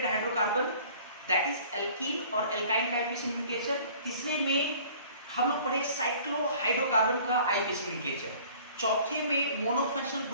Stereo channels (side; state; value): both; inverted; correlation -0.50